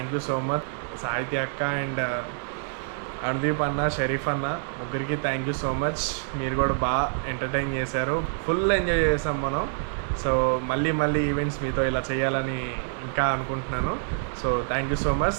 యూ సో మచ్. సాహిత్య అక్క అండ్ అనుదీప్ అన్న, షరీఫ్ అన్న, ముగ్గురికి థ్యాంక్ యూ సో మచ్. మీరు కూడా బాగా ఎంటర్టైన్ చేశారు. ఫుల్ ఎంజాయ్ చేసాం మనం. సో మళ్ళీ ఈవెంట్స్ మీతో ఇలా చేయాలని ఇంకా అనుకుంటున్నాను. So thank you so much.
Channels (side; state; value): left; silent; digital silence